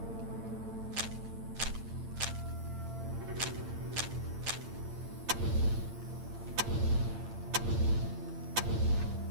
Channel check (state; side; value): late; left; 8.8 ms